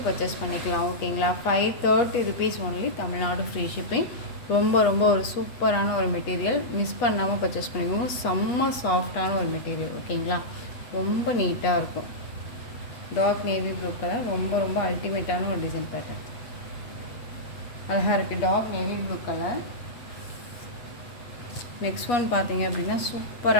பர்ச்சேஸ் பண்ணிக்கலாம். ஓகேங்களா, 530 rupees only, Tamil Nadu free shipping. ரொம்ப ரொம்ப ஒரு சூப்பரான ஒரு மெட்டீரியல், மிஸ் பண்ணாமல் பர்ச்சேஸ் பண்ணிக்கோங்க. செம்ம சாஃப்டான ஒரு மெட்டீரியல். ஓகேங்களா, ரொம்ப நீட்டாக இருக்கும். டார்க் நேவி ப்ளூ கலர், ரொம்ப ரொம்ப அல்டிமேட்டான ஒரு டிசைன் பேட்டர்ன், அழகாக இருக்குது. Dark navy blue colour. Next one பார்த்தீங்க அப்படின்னா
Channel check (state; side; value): late; right; 8.2 ms